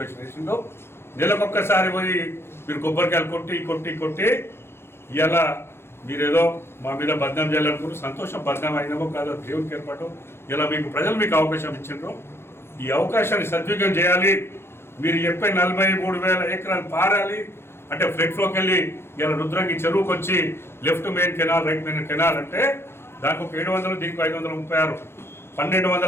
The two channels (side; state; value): right; late; 0.12 ms